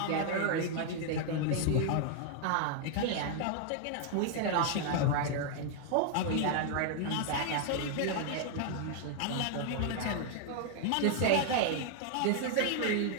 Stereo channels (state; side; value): different; both; correlation 0.00